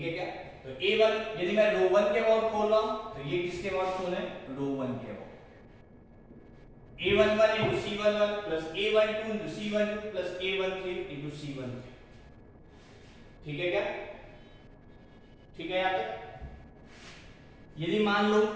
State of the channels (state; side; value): identical; both; correlation 1.00